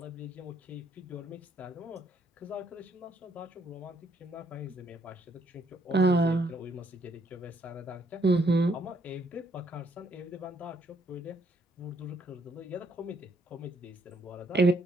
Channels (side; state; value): both; normal; correlation 0.69